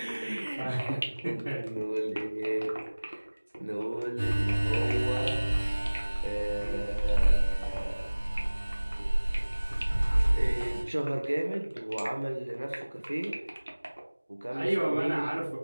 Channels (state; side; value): inverted; both; correlation -1.00